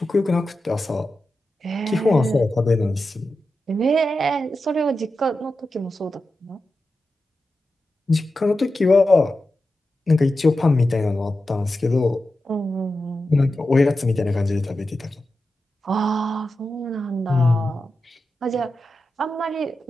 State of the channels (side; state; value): both; normal; correlation 0.91